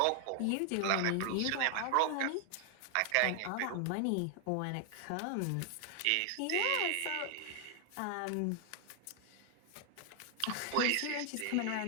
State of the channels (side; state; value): both; different; correlation 0.00